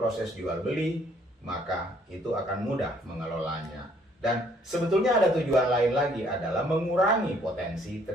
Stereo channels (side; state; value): both; normal; correlation 0.63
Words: jual beli, maka itu akan mudah mengelolanya. Dan sebetulnya ada tujuan lain lagi, adalah mengurangi potensi